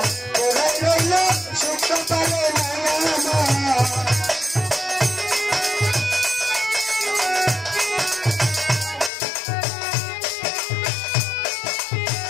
পোড়াই রইল সুখ কপালে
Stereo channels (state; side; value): drops out; right; at 9.1 s